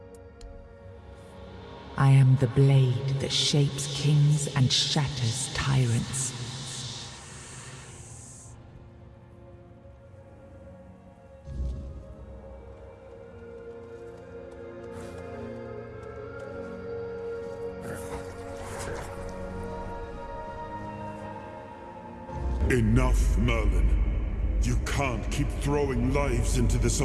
I am the blade that shapes kings and shatters tyrants. Enough, Merlin. You can't keep throwing lives into this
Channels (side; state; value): both; identical; correlation 1.00